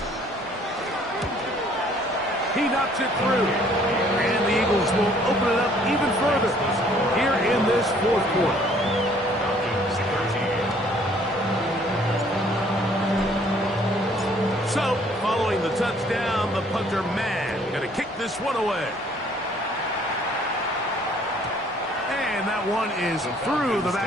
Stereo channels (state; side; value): normal; both; correlation 0.60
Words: He knocks it through. And the Eagles will open it up even further here in this fourth quarter. Falcons 13. So, following the touchdown, the punter man going to kick this one away. And that one is through the